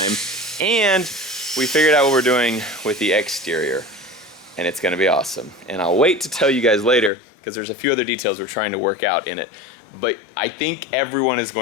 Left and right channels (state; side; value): drops out; right; at 7.1 s